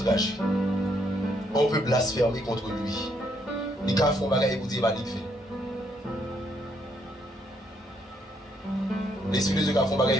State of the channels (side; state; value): both; normal; correlation 0.72